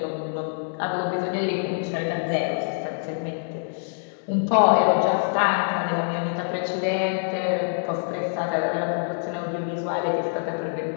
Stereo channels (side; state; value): right; silent; 62 dB below the other